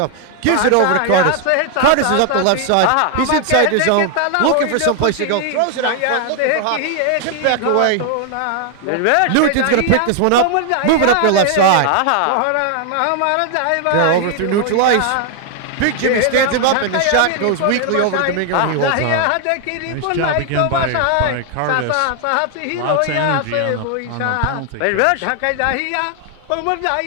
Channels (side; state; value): both; different; correlation 0.00